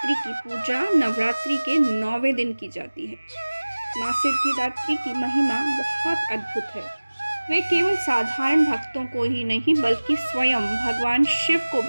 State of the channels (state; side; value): inverted; both; correlation -1.00